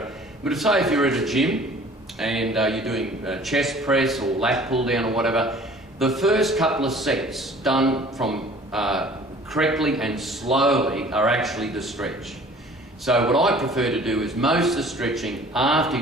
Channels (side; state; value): both; normal; correlation 0.49